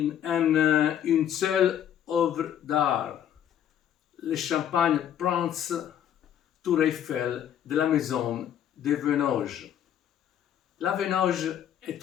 en une seule œuvre d'art, le champagne Prince Tour Eiffel de la maison de Venoge. La Venoge est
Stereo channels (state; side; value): quieter; right; 10.1 dB